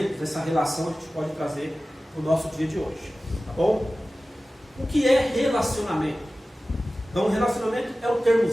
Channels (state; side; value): normal; both; correlation 0.96